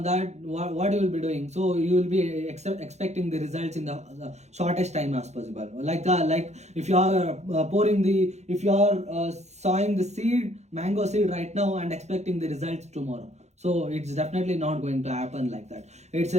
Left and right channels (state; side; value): late; left; 0.33 ms